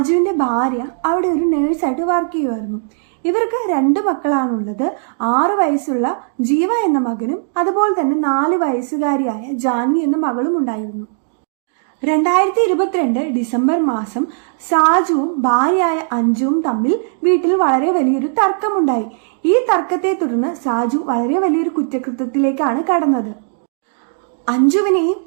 ഭാര്യ അവിടെ ഒരു നേഴ്സായിട്ട് വർക്ക് ചെയ്യുമായിരുന്നു. ഇവർക്ക് 2 മക്കളാണുള്ളത്. 6 വയസ്സുള്ള ജീവ എന്ന മകനും അതുപോലെ തന്നെ 4 വയസ്സുകാരിയായ ജാൻവി എന്ന മകളും ഉണ്ടായിരുന്നു. 2022 ഡിസംബർ മാസം സാജുവും ഭാര്യയായ അഞ്ജുവും തമ്മിൽ വീട്ടിൽ വളരെ വലിയൊരു തർക്കമുണ്ടായി. ഈ തർക്കത്തെ തുടർന്ന് സാജു വളരെ വലിയൊരു കുറ്റകൃത്യത്തിലേക്കാണ് കടന്നത്. അഞ്ജുവിനെയും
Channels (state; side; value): silent; left; digital silence